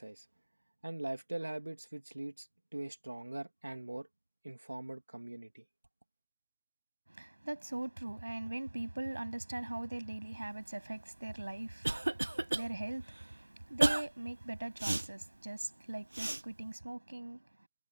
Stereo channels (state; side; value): inverted; both; correlation -1.00